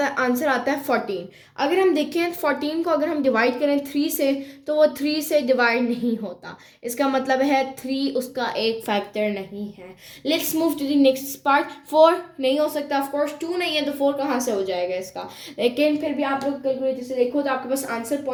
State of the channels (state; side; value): identical; both; correlation 1.00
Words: आंसर आता है 14। अगर हम देखें 14 को अगर हम डिवाइड करें 3 से, तो वो 3 से डिवाइड नहीं होता, इसका मतलब है 3 उसका एक फैक्टर नहीं है। Let's move to the next part. 4 नहीं हो सकता, ऑफ कोर्स 2 नहीं है, तो 4 कहाँ से हो जाएगा इसका, लेकिन फिर भी आप लोग कैलकुलेटर से देखो तो आपके पास आंसर